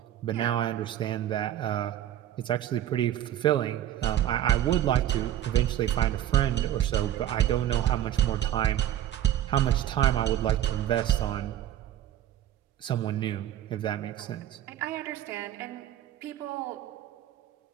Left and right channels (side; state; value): left; quieter; 11.8 dB